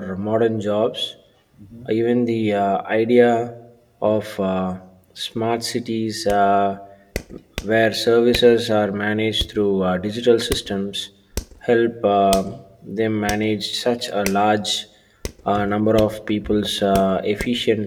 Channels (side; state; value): both; identical; correlation 1.00